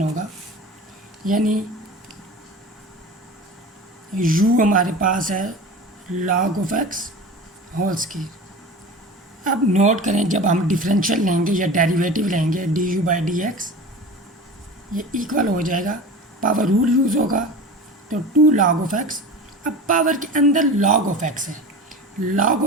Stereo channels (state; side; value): normal; both; correlation 0.33